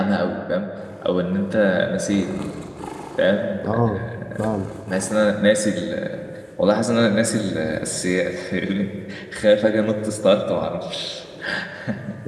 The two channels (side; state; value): both; identical; correlation 1.00